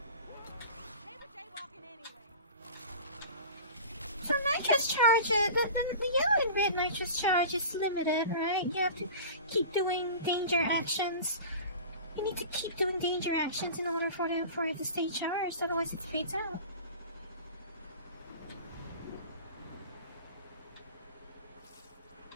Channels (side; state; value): both; inverted; correlation -0.36